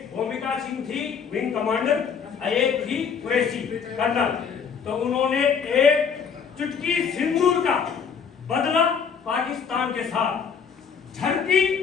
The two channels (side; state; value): right; quieter; 6.6 dB